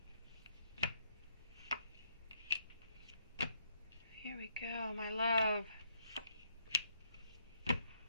here we go, my love.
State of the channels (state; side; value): inverted; both; correlation -0.73